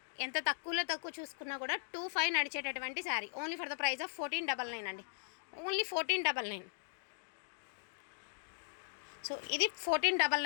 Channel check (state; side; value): silent; right; digital silence